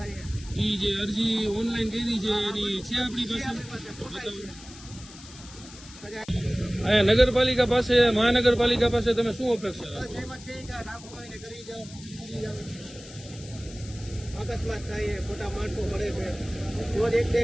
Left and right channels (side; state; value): left; noise; hiss, 18 dB below the sound